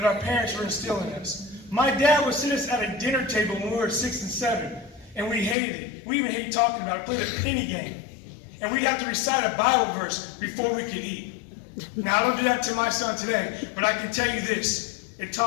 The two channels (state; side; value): drops out; right; at 5.6 s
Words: our parents were instilling in us. My dad would sit us at a dinner table when we were 6 and 7, and we hated it. We even hated talking about it, played a penny game. And we'd have to recite a Bible verse before we could eat. Now, I don't do that to my son today, but I can tell you this. It